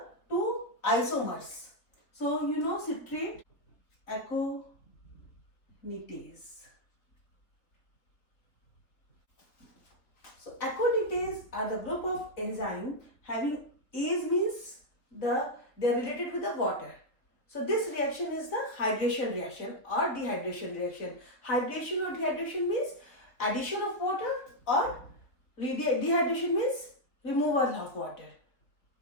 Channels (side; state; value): right; late; 3.5 ms